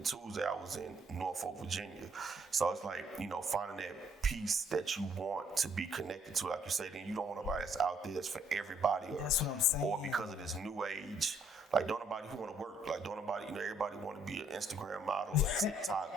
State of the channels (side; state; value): both; normal; correlation 0.66